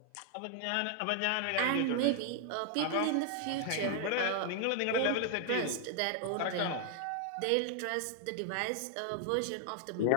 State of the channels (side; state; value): both; different; correlation 0.00